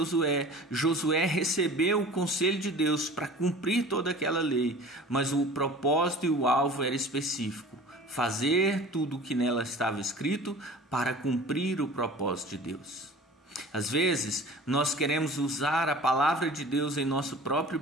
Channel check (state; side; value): normal; both; correlation 0.42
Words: Josué recebeu o conselho de Deus para cumprir toda aquela lei, mas o propósito e o alvo era específico: fazer tudo o que nela estava escrito para cumprir o propósito de Deus. Às vezes, nós queremos usar a palavra de Deus em nosso próprio